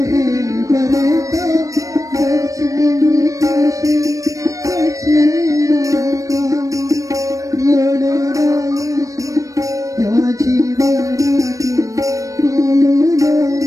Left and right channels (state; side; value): late; left; 0.16 ms